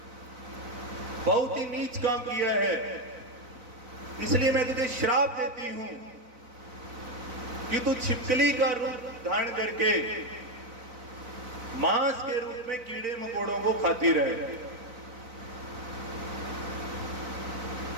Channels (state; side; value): late; left; 4.0 ms